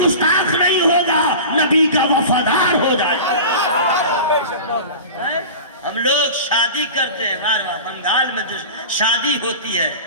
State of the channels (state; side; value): inverted; both; correlation -0.34